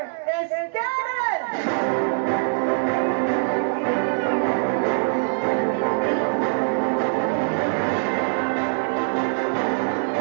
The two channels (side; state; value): left; silent; digital silence